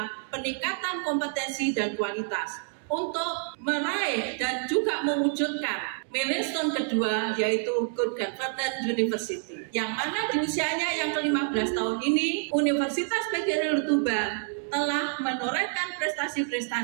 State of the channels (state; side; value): silent; left; 59 dB below the other